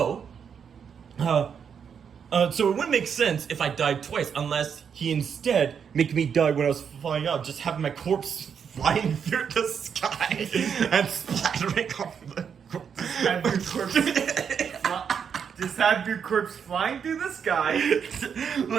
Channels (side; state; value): left; quieter; 7.2 dB